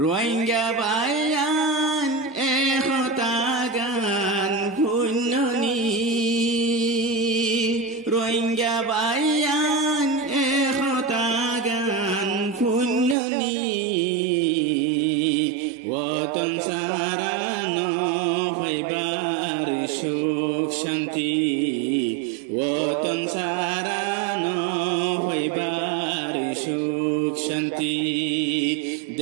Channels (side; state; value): left; drops out; at 13.2 s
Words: বায়ান একতা গান পুণ্যনি রোহিঙ্গা বায়ান একতা গান সুখ শান্তি